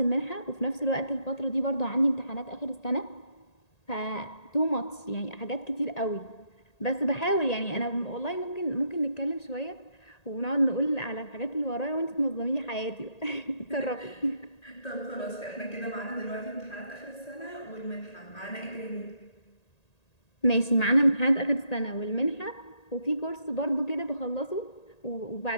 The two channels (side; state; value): right; late; 1.8 ms